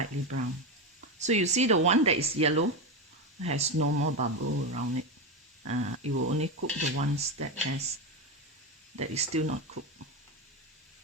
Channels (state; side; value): normal; both; correlation 0.13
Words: brown. So you see the one that is yellow has no more bubble around it. It will only cook the ones that is still not cooked.